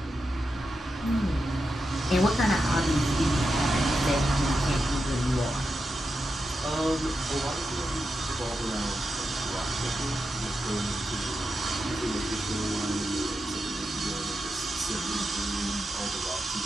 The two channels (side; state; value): both; normal; correlation 0.88